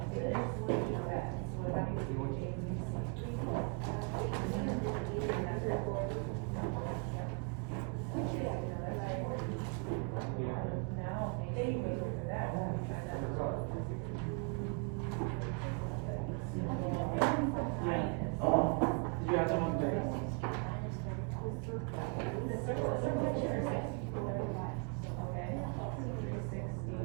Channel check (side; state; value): left; quieter; 38.1 dB